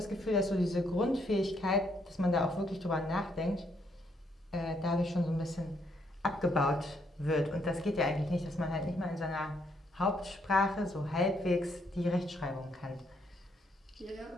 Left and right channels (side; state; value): both; normal; correlation 0.72